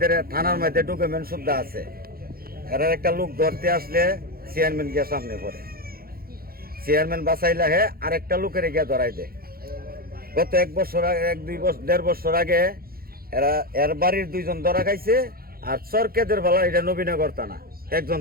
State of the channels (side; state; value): left; late; 0.43 ms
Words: থানার মধ্যে ডকুমেন্ট সুদ্ধা আছে। এরা একটা লোক ধরতে আসলে চেয়ারম্যান গিয়ে সামনে পড়ে, চেয়ারম্যান বাঁচাইলে হে আরেকটা লোকের গিয়ে ধরাই দেয়। গত 1-2 বছর আগে এর বাড়ির 2 জন ধরা খাইছে, আর চরকেদের বেলা এটা নবীনগর থানা 1 জন